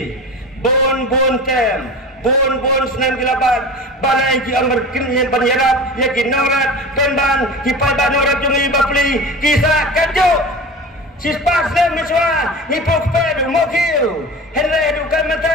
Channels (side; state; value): both; normal; correlation 0.33